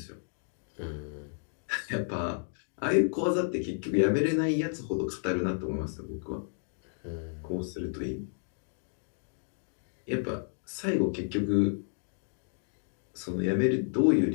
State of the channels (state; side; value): silent; right; digital silence